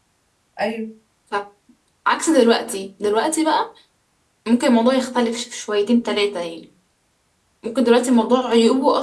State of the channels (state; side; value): identical; both; correlation 1.00